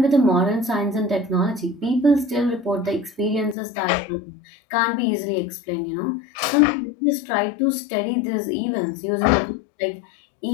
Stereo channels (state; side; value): drops out; right; at 3.6 s